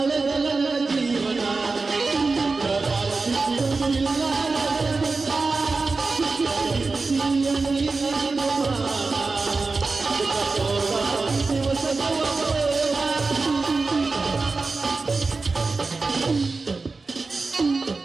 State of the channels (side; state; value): left; quieter; 3.9 dB